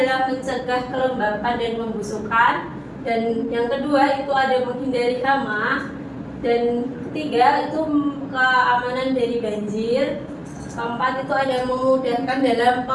mencegah kelembapan dan pembusukan. Dan yang kedua itu ada menghindari hama. Dan ketiga itu keamanan dari banjir. Keempat itu ada memudahkan dalam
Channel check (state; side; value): identical; both; correlation 1.00